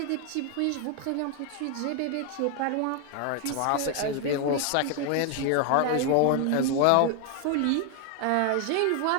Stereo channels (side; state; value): both; different; correlation 0.00